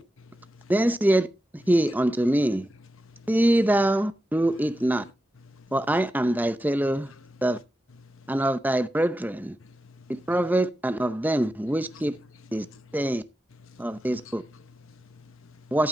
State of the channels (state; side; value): normal; both; correlation 0.90